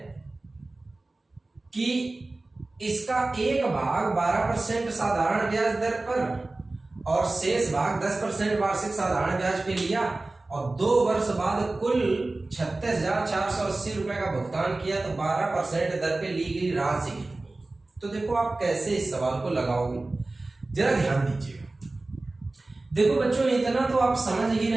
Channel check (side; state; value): left; quieter; 3.1 dB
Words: कि इसका एक भाग 12% साधारण ब्याज दर पर और शेष भाग 10% वार्षिक साधारण ब्याज पे लिया, और 2 वर्ष बाद कुल 36,480 रुपए का भुगतान किया, तो 12% दर पे ली गई राशि कितनी? तो देखो आप कैसे इस सवाल को लगाओगे, जरा ध्यान दीजिएगा। देखो बच्चों इतना तो आप समझ ही